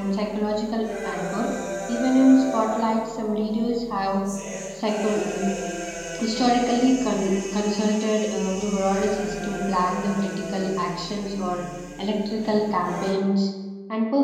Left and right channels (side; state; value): both; identical; correlation 1.00